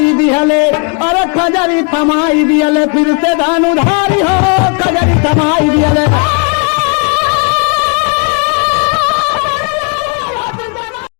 दिहले, अरे खजरी थमाई दिहले फिर से धनुधारी हो, खजरी थमाई दिया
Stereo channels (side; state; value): right; quieter; 36.1 dB